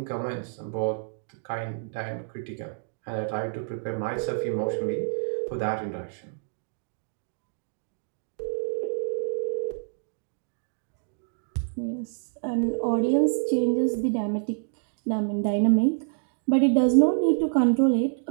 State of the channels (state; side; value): silent; left; digital silence